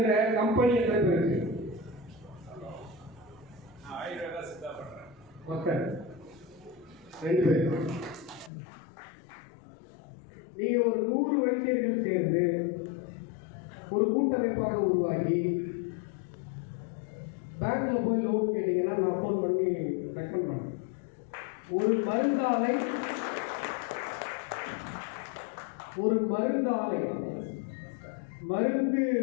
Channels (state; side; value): drops out; right; at 8.5 s